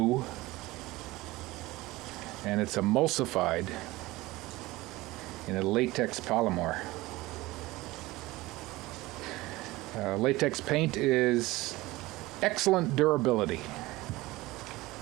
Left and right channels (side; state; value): left; quieter; 19.5 dB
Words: and it's emulsified in a latex polymer. Latex paint is excellent durability